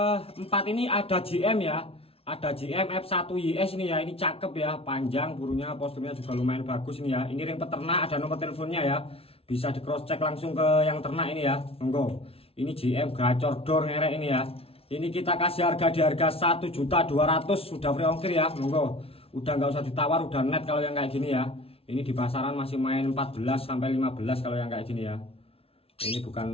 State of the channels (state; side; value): late; right; 0.27 ms